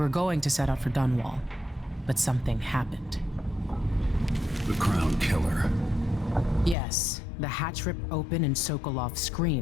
going to set out for Dunwall, but something happened. The Crown Killer. Yes, the hatch ripped open and Sokolov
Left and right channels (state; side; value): drops out; right; at 6.8 s